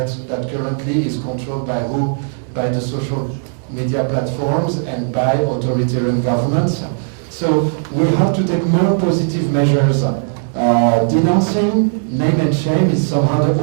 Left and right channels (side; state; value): left; silent; digital silence